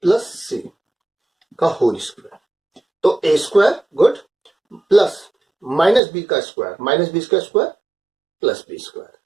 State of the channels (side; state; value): left; drops out; at 6.0 s